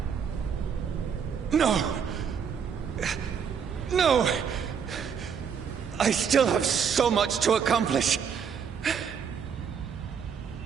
No! No! I still have so much to accomplish.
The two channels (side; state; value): left; quieter; 7.0 dB